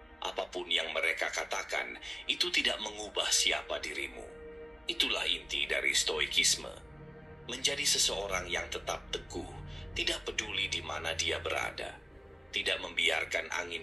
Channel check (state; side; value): normal; both; correlation 0.97